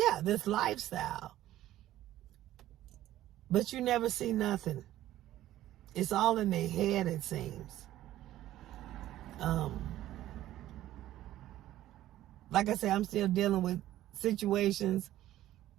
this lifestyle. But you never see nothing. It's all in their head, it seems. Like I said, I'm still dealing with situations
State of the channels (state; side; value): quieter; left; 13.9 dB